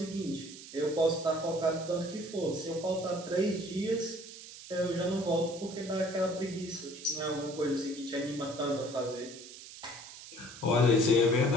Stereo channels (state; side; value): noise; right; hiss, 15 dB below the sound